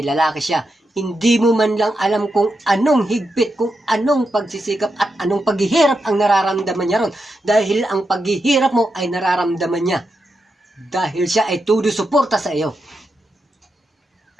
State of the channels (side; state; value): both; normal; correlation 0.86